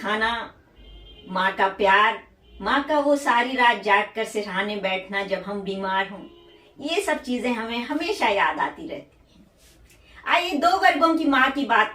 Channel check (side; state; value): both; identical; correlation 1.00